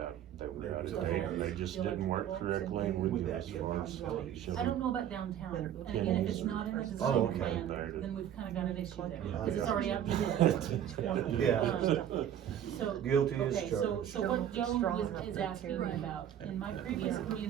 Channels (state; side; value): quieter; left; 10.2 dB